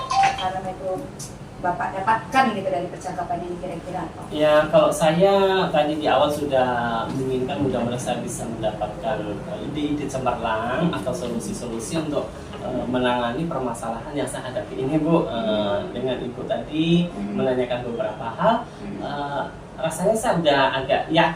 karena itu Bapak dapatkan gitu dari percakapan ini kira-kira apa? Ya, kalau saya tadi di awal sudah menginginkan mudah-mudahan saya bisa mendapatkan ide-ide cemerlang atau solusi-solusi untuk menangani permasalahan yang saya hadapi ini Bu. Dengan Ibu tadi menanyakan beberapa hal, rasanya saya sudah agak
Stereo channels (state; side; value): identical; both; correlation 1.00